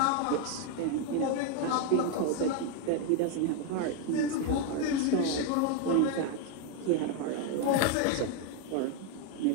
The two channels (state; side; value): different; both; correlation 0.01